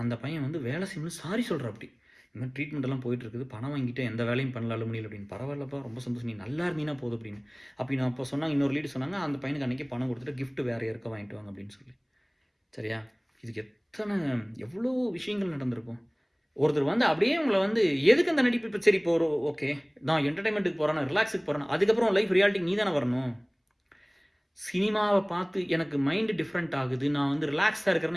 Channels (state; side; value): identical; both; correlation 1.00